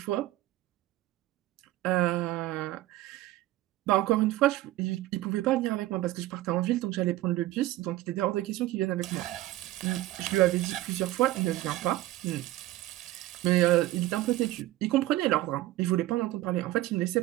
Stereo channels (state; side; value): quieter; left; 16.1 dB